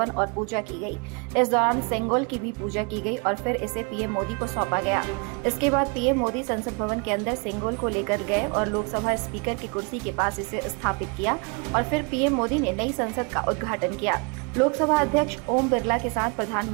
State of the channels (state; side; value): quieter; left; 32.6 dB